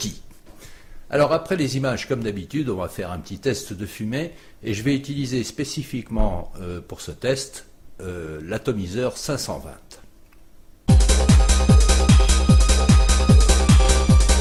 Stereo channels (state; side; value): identical; both; correlation 1.00